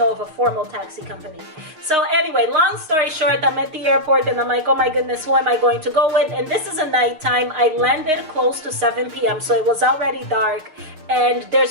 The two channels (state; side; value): late; left; 6.4 ms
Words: of a formal taxi company. So anyway, long story short, I'm at the airport and I'm like, oh my goodness, who am I going to go with? And this is a nighttime. I landed close to 7 p.m. so it was already dark, and